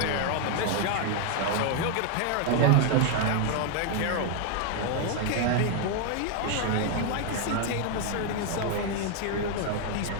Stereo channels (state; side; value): different; both; correlation 0.00